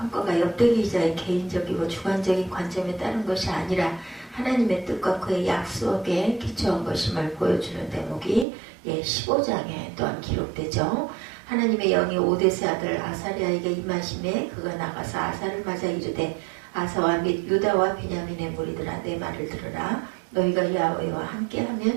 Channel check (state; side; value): drops out; left; at 8.5 s